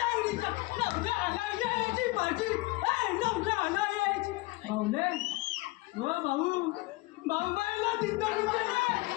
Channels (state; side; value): quieter; right; 21.9 dB